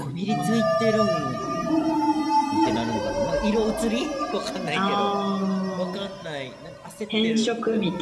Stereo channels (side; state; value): both; identical; correlation 1.00